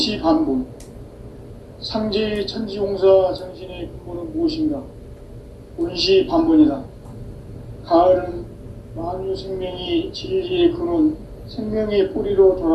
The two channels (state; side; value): identical; both; correlation 1.00